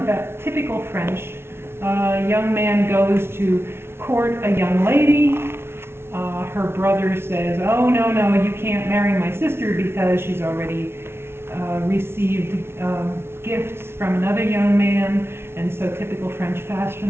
typical French. A young man goes to court a young lady. Her brother says, "Oh, no, you can't marry my sister because she's already received gifts from another young man." And so typical French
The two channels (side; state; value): left; late; 0.12 ms